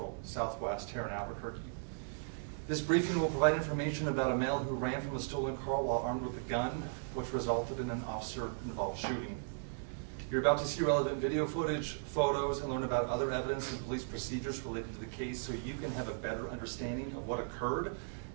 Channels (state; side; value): silent; left; digital silence